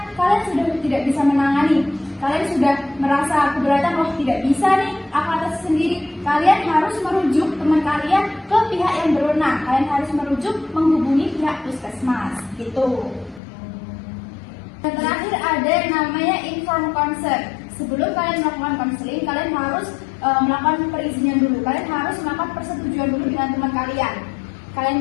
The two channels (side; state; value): right; drops out; at 13.4 s